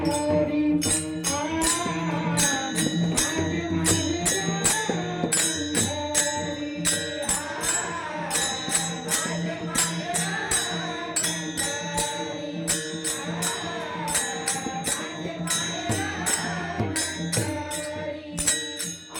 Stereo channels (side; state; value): both; identical; correlation 1.00